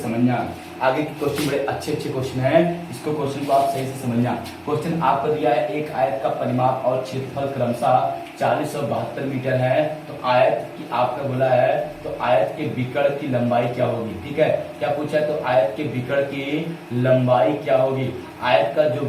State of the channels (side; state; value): both; identical; correlation 1.00